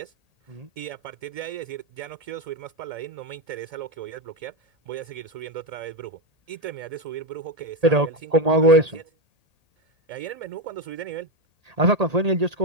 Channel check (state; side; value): late; left; 1.8 ms